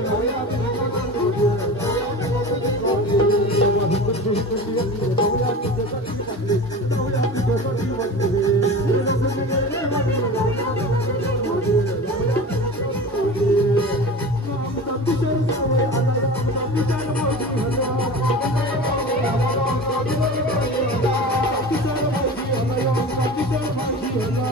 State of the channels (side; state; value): both; normal; correlation 0.33